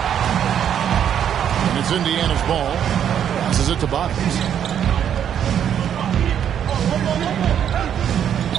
And it's Indiana's ball. Passes it to Bottoms.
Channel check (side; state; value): left; quieter; 9.2 dB